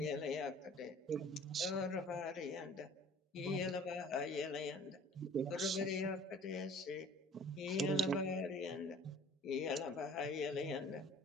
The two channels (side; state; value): both; normal; correlation 0.49